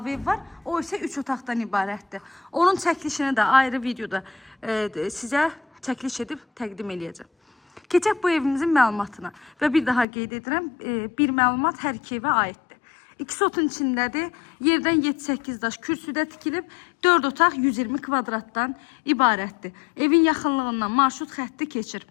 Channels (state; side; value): drops out; right; at 10.1 s